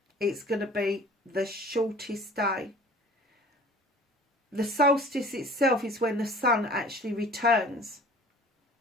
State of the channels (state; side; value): normal; both; correlation 0.47